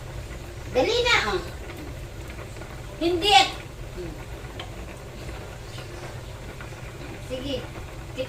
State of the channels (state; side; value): identical; both; correlation 1.00